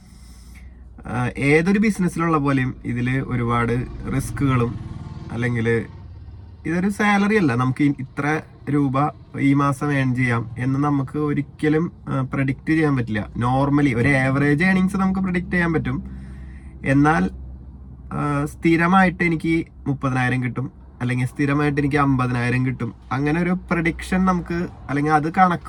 ഏതൊരു ബിസിനസ്സിലുള്ള പോലെയും ഇതിൽ ഒരുപാട് റിസ്കുകളും, അല്ലെങ്കിൽ ഇതൊരു സാലറി അല്ല, നമുക്ക് ഇത്ര രൂപ ഈ മാസം ഏൺ ചെയ്യാം എന്ന് നമുക്ക് ഒരിക്കലും പ്രഡിക്റ്റ് ചെയ്യാൻ പറ്റില്ല. നോർമലി ഒരു ആവറേജ് ഏണിങ്സ് നമുക്ക് പ്രഡിക്റ്റ് ചെയ്യാൻ പറ്റും. എന്നാൽ സ്ഥിരമായിട്ട് എനിക്ക് 30,000 കിട്ടും അല്ലെങ്കിൽ സ്ഥിരമായിട്ട് എനിക്ക് 50,000 കിട്ടും, അങ്ങനെ ഒരു പ്രഡിക്ഷൻ നമുക്ക് അല്ലെങ്കിൽ അത്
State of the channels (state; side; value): identical; both; correlation 1.00